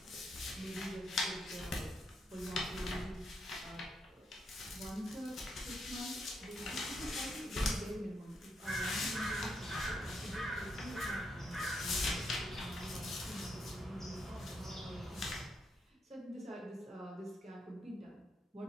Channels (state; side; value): normal; both; correlation 0.79